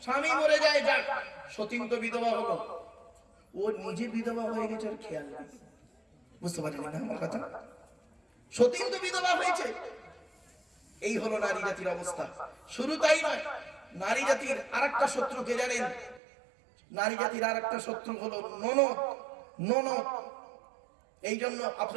স্বামী মরে যায় যাক, সতীন তো বিধবা হলো, ও নিজে বিধবা হয়ে গেছে আর খেয়াল নেই। বুঝতে পারলেন না আমার কথা? সতীন তো বিধবা হয়েছে। এই হলো নারী জাতির অবস্থা। শুরু তাই নয়, নারী জাতির আরেকটা শত্রু কে জানেন? নারী জাতির আরেকটা শত্রু হলো ননদ। এই জন্য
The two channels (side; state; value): left; drops out; at 16.2 s